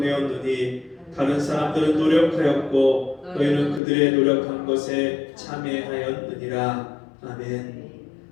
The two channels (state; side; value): drops out; right; at 3.8 s